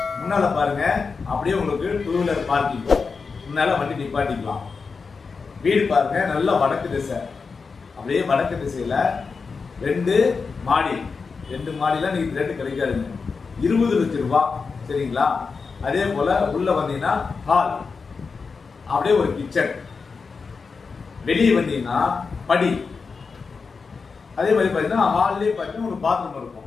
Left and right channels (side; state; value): right; quieter; 4.9 dB